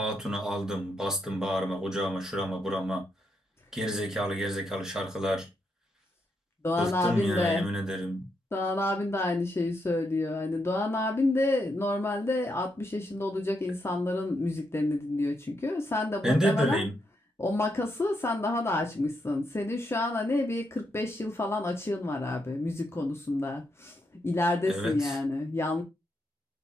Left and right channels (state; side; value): normal; both; correlation 0.80